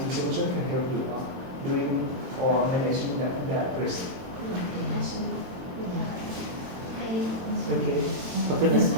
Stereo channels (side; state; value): left; late; 22 ms